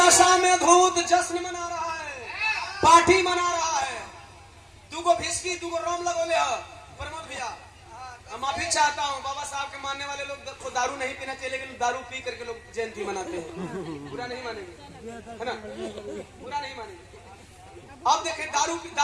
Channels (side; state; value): both; identical; correlation 1.00